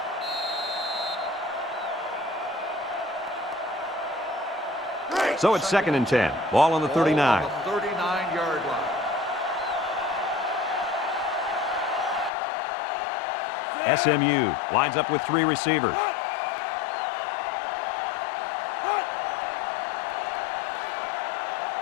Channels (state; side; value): drops out; right; at 12.3 s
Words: So it's 2nd and 10. Ball on the 39. 39-yard line. SMU lines up with 3 receivers.